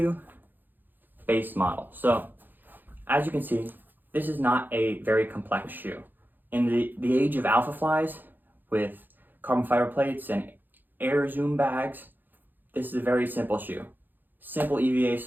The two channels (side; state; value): left; late; 0.089 ms